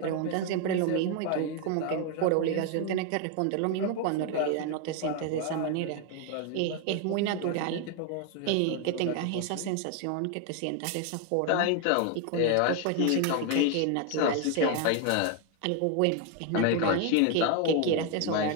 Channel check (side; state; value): both; different; correlation 0.01